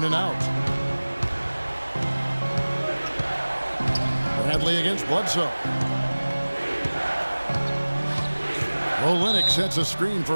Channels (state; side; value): inverted; both; correlation -1.00